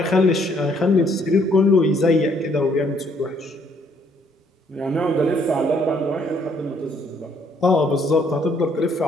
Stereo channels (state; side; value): normal; both; correlation 0.66